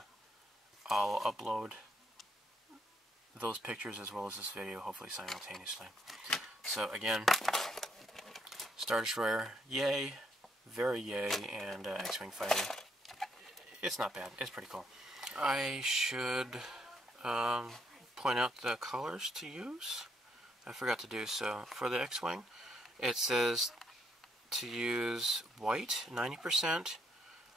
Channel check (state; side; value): normal; both; correlation 0.73